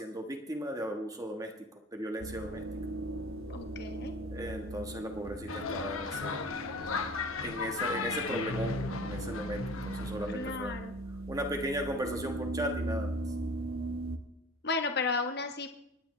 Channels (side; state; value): both; normal; correlation 0.42